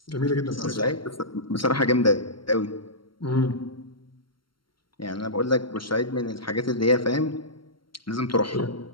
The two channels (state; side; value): late; right; 0.73 ms